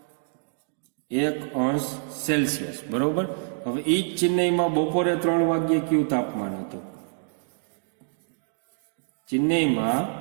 અંશ સેલ્સિયસ. બરોબર. હવે એ જ ચેન્નઈમાં બપોરે 3 વાગ્યે કયું તાપમાન હતું? ચેન્નઈમાં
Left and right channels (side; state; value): left; silent; digital silence